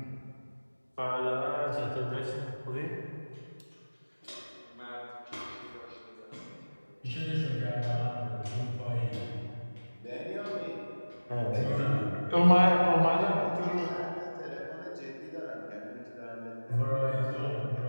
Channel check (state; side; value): inverted; both; correlation -1.00